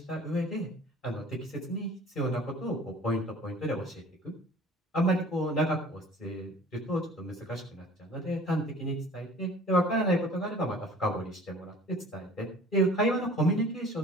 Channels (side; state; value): both; normal; correlation 0.48